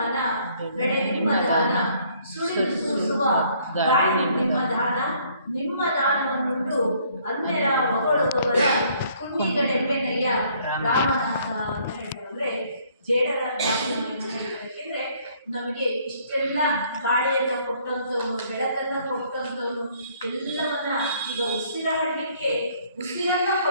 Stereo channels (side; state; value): both; inverted; correlation -0.63